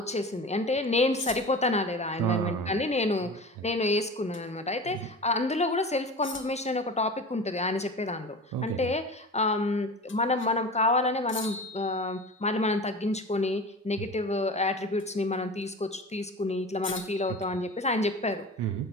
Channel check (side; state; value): both; normal; correlation 0.34